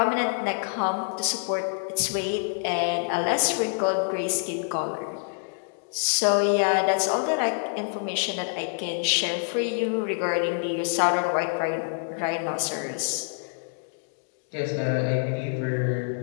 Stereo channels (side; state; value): right; silent; 61 dB below the other